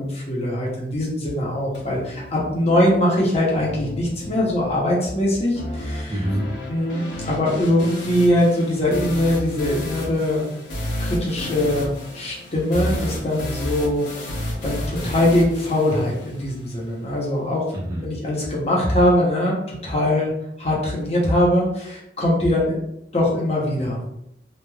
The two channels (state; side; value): normal; both; correlation 0.61